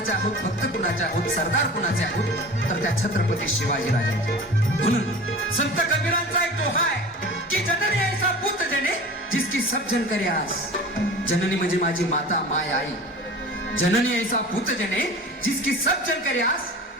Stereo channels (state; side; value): normal; both; correlation 0.38